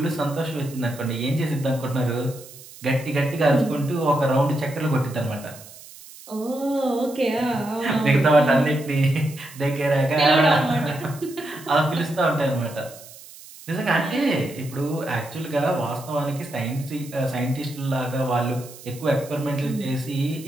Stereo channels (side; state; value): right; noise; hiss, 18 dB below the sound